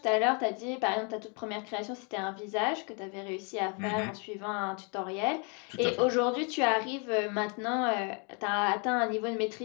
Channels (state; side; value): quieter; right; 35.6 dB